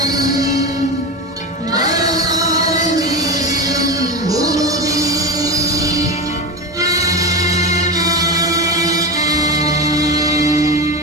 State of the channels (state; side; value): normal; both; correlation 0.20